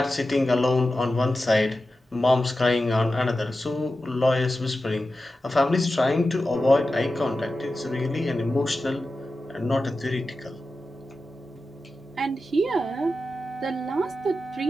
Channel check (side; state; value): both; normal; correlation 0.92